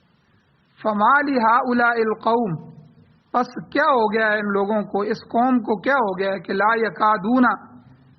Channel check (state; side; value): identical; both; correlation 1.00